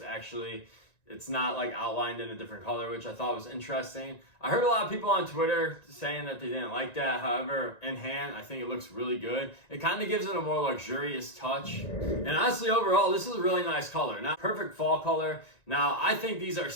actually, it's not like outlined in a different color, which I thought was interesting. I heard a lot of people on Twitter saying that they didn't like that. However, in hand, I think it looks really good. It kind of gives it a more luxurious touch. And honestly, overall, this is a really nice color. Not perfect fall color. Now, I think these are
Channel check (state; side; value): late; right; 1.9 ms